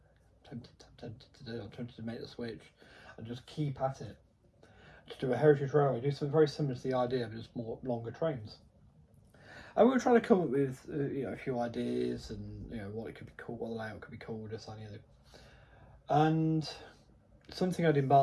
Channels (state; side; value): identical; both; correlation 1.00